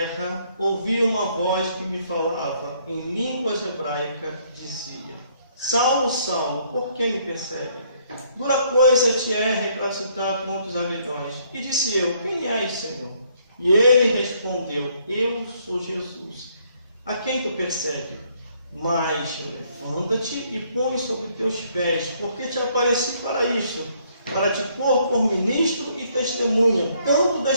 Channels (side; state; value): both; inverted; correlation -0.67